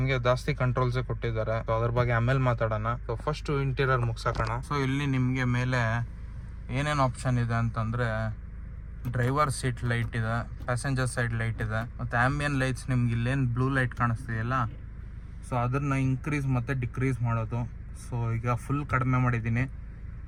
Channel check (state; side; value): identical; both; correlation 1.00